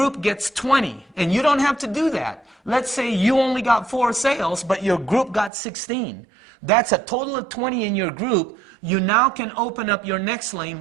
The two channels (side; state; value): left; drops out; at 5.5 s